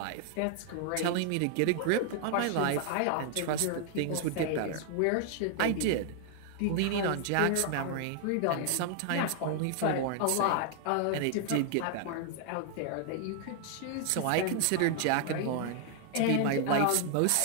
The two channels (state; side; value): different; both; correlation 0.00